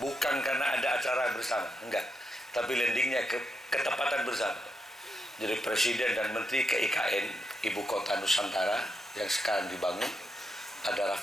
Bukan karena ada acara bersama, enggak. Tapi landingnya ketepatan bersama. Jadi Presiden dan Menteri ke IKN, Ibu Kota Nusantara yang sekarang dibangun. Ada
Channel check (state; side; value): normal; both; correlation 0.83